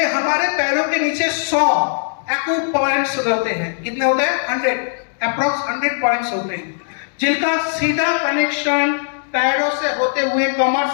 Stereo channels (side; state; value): right; silent; digital silence